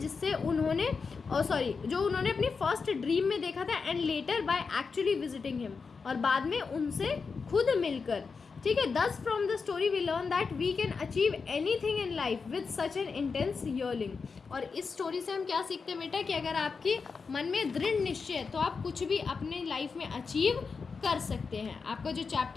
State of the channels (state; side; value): quieter; right; 5.0 dB